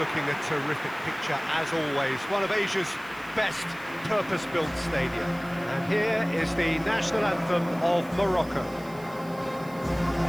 a terrific picture as always, one of Asia's best purpose-built stadia. And here is the national anthem of Morocco.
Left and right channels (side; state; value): right; noise; hiss, 23 dB below the sound